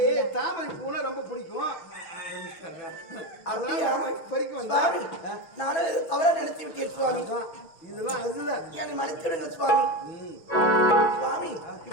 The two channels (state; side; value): late; right; 6.0 ms